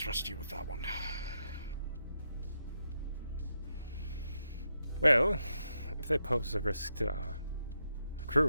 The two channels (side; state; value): both; inverted; correlation -0.83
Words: you with that one. Well, if they pose a risk to our